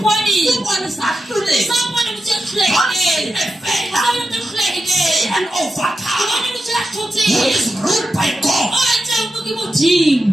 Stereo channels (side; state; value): both; normal; correlation 0.89